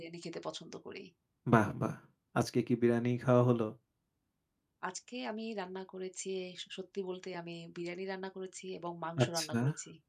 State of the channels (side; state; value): both; identical; correlation 1.00